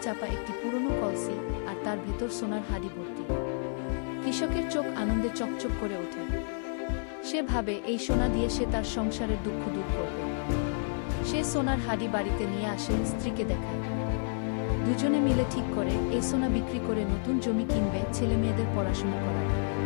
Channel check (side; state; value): right; silent; digital silence